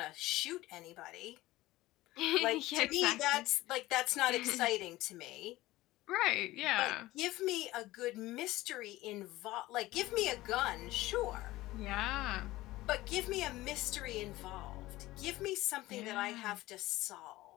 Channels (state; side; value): quieter; right; 17.7 dB